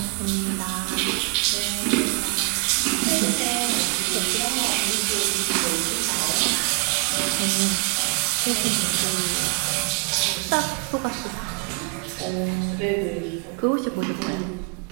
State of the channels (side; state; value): left; quieter; 30.0 dB